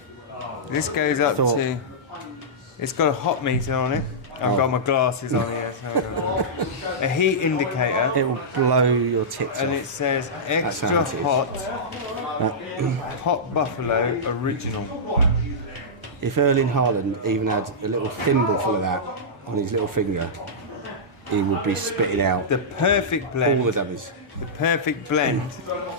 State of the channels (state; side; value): normal; both; correlation -0.14